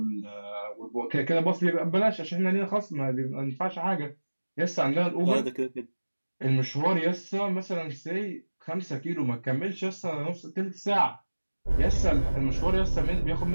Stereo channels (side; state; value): both; inverted; correlation -1.00